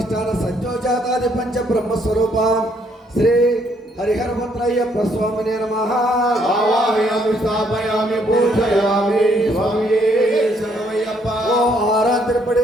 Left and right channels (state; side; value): normal; both; correlation 0.69